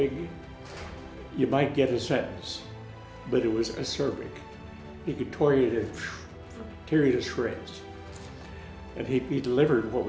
you might get a sentence, but it was acerbic. He could tear you to shreds. And he delivered what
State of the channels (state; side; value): identical; both; correlation 1.00